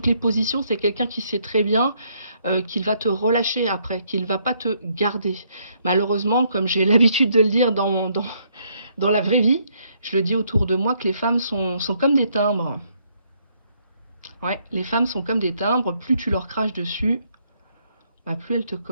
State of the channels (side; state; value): both; inverted; correlation -0.71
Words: positions, c'est quelqu'un qui sait très bien qu'il va te relâcher après, qu'il ne va pas te garder. Malheureusement, comme j'ai l'habitude de le dire dans la vraie vie, je le dis autour de moi que les femmes sont comme des timbres. Ouais, les femmes sont comme des timbres, plus tu leur craches dessus, bah, plus elles te